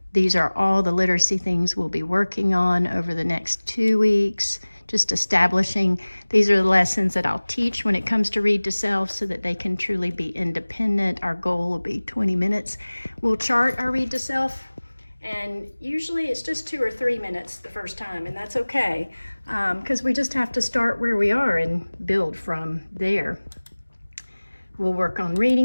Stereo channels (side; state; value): both; inverted; correlation -1.00